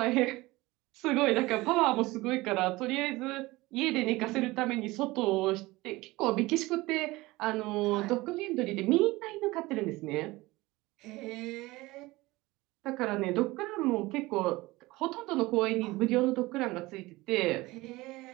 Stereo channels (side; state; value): left; quieter; 20.4 dB